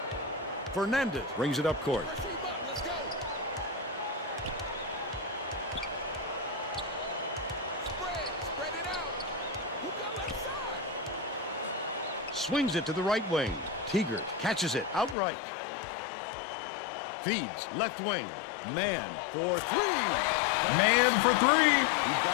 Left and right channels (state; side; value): drops out; right; at 15.2 s